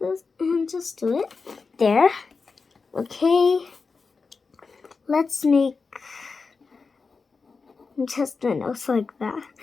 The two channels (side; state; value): right; quieter; 4.6 dB